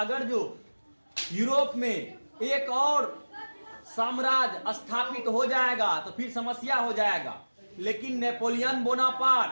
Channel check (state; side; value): inverted; both; correlation -1.00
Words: जो यूरोप में एक और साम्राज्य स्थापित हो जाएगा तो फिर समस्या हो जाएगा। लेकिन नेपोलियन